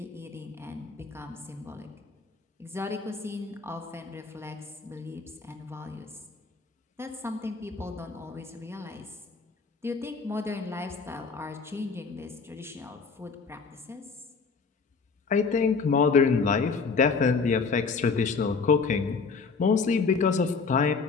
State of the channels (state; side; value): quieter; right; 4.8 dB